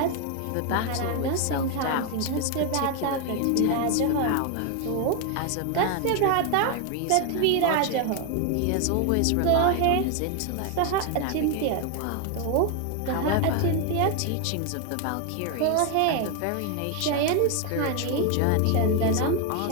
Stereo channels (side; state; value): both; different; correlation 0.01